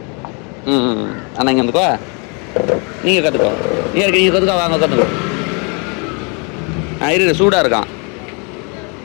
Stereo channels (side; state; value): right; quieter; 34.3 dB